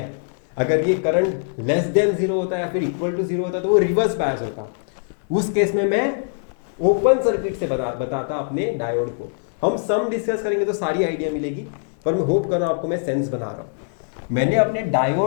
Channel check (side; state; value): right; silent; 64 dB below the other